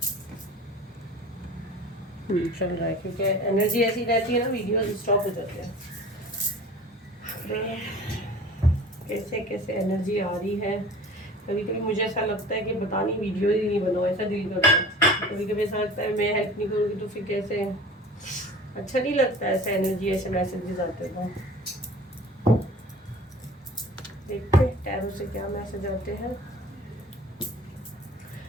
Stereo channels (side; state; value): both; normal; correlation 0.42